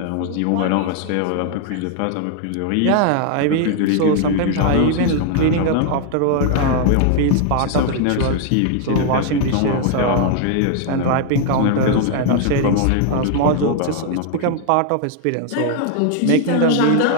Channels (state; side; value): different; both; correlation 0.00